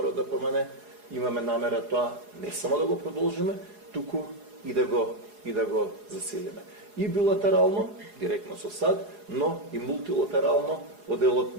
ДПМН, имаме намера тоа не само да го продолжиме, туку и да го засилиме. И билатерално, директно со САД, но и мултилатерално во делот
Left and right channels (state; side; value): late; left; 4.8 ms